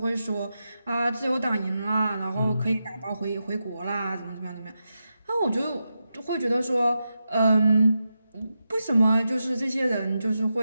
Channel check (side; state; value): both; inverted; correlation -0.88